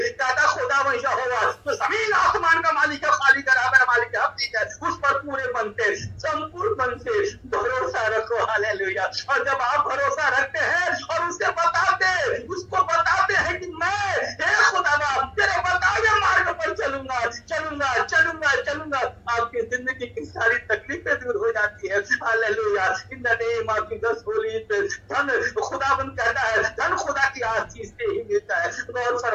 कहता खुदा वैसा होगा तो जमीन आसमान का मालिक है, खाली कराबर मालिक है, ठीक है, उस पर पूरे मन से, संपूर्ण मन से भरोसा रखो। हालेलुया। और जब आप भरोसा रखते हैं और उसको बताते हैं कि मैं हे खुदा बाप तेरे बताए मार्ग पर चलूंगा, चलूंगा, चलूंगा, चलूंगा, आपकी जिंदगी की सारी तकलीफें दूर हो जाती है। Hallelujah. In the name of Jesus Holy spirit. धन खुदाबंद कहता है, धन खुदा की आशीष से ही मिलता है। गौर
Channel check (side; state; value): both; identical; correlation 1.00